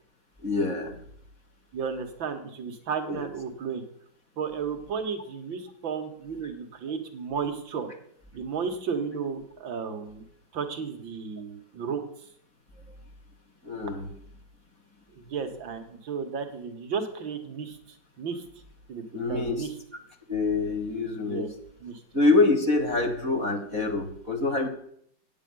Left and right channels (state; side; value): late; left; 4.1 ms